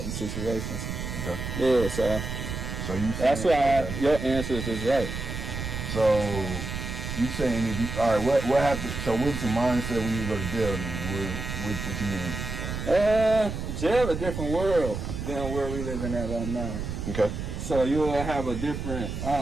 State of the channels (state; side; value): noise; right; rumble, 5 dB below the sound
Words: situations. Okay. Yeah, so you that's why your answers is right. So you saying all right? What happened? So what's the mindset when you go to jail? Then what you mean? Jail a different world than where we living at right now. Okay. So you'll have a different